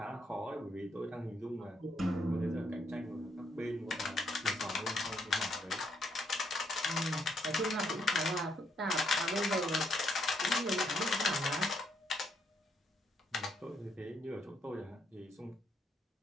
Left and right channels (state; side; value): normal; both; correlation 0.74